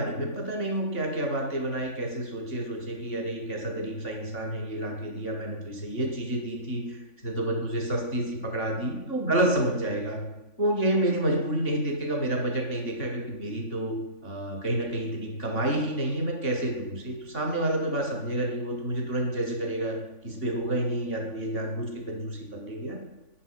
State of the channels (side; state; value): right; late; 3.5 ms